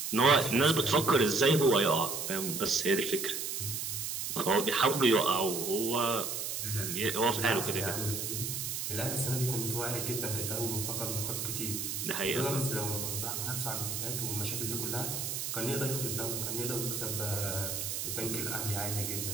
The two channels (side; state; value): right; noise; hiss, 3 dB below the sound